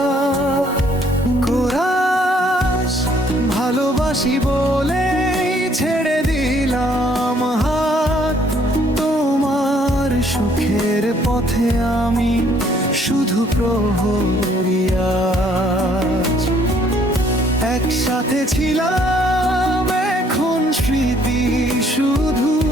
কোরাস ভালোবাসি বলেই ছেড়ে দিলাম হাত, তোমার সুখের পথে আমি শুধু প্রহরী আজ। একসাথে ছিলাম এখন স্মৃতি শুধু,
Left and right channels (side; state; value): both; normal; correlation 0.64